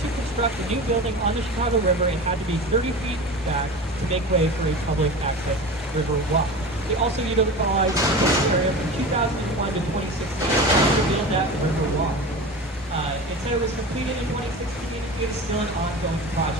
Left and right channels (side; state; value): both; normal; correlation 0.31